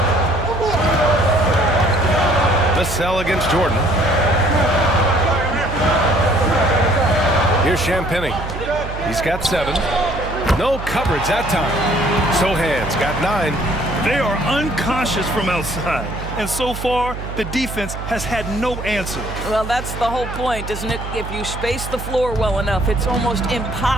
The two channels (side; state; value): right; noise; hum, 8 dB below the sound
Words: Vassell against Jordan. Here's Champagnie. He's got 7. No coverage that time. Sohan's got 9. They are unconscious from outside. And so far, the defense has had no answer. Well, that's the whole point, isn't it? If you space the floor well enough, it's almost